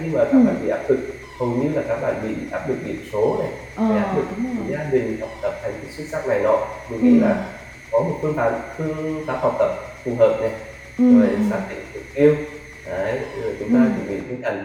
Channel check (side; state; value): both; identical; correlation 1.00